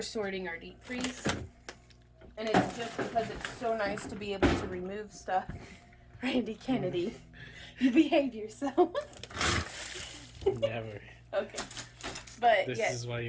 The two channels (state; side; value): identical; both; correlation 1.00